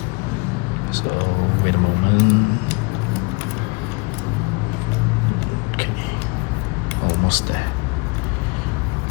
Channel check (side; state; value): right; quieter; 30.1 dB